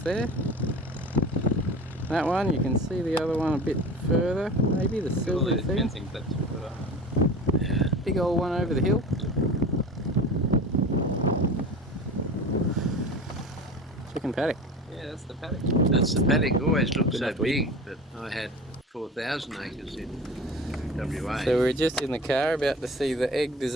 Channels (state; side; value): normal; both; correlation 0.36